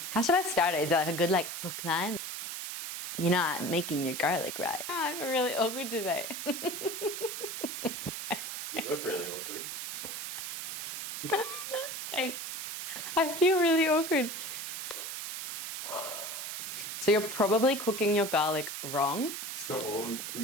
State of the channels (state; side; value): noise; right; hiss, 6 dB below the sound